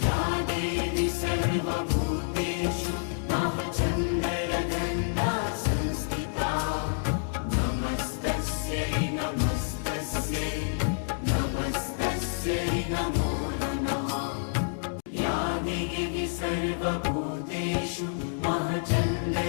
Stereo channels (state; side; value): silent; right; digital silence